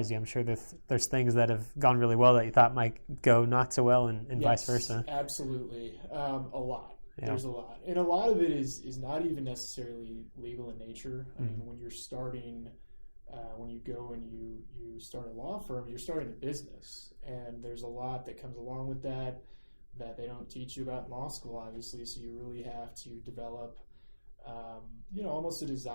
you? I'm sure there's things that have gone really well that you thought might go not so well, and yes, vice versa. Absolutely. A lot. Yeah. There's a lot. And a lot of it is not even necessarily legal in nature. I mean, when you're starting, when you go and you start a law firm, you're starting a business. And there's a lot that comes along with that they don't teach you about in law school, obviously. So you really have to develop, almost a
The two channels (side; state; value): both; inverted; correlation -1.00